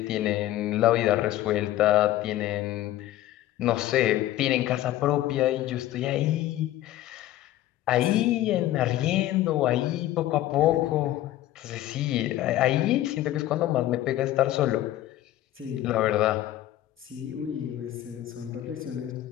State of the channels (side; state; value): right; quieter; 14.2 dB